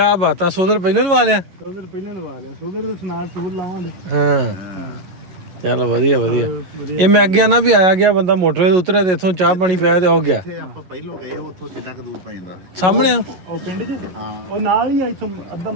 ਬਾਤਾਂ, ਸੋਦਰ ਪਹਿਲਾਂ ਲਵਾ ਲਿਆ? ਸੋਦਰ ਪਹਿਲਾਂ ਲਵਾ ਲਿਆ, ਸੋਦਰ ਦੇ ਸਨਾਰ ਟੂਰ ਲਾਵਾਂਗੇ। ਹਾਂ ਚਲ ਵਧੀਆ ਵਧੀਆ। ਇਹ ਮੈਂ ਅੱਗੇ ਨਾ ਵੀ ਆਇਆ ਗਿਆ ਬੰਦਾ ਮੋਟਰਵੇ ਤੇ ਉਤਰਿਆ ਤੇ ਇੱਥੋਂ ਚਾਹ ਪਾਣੀ ਪਿਆ ਤੇ ਉਹ ਗਿਆ। ਆਪਾਂ ਪਹਿਲੋਂ ਗਏ ਉੱਥੋਂ ਕਿੰਨਾ ਕੁ ਦੂਰ ਪੈ ਜਾਂਦਾ? ਸਾਹਮਣੇ ਆ ਉਹ ਪਿੰਡ 'ਚ ਉਹ ਨਾਲ ਹੀ ਆ, ਇੱਥੋਂ ਅੱਧਾ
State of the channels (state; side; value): late; left; 11 ms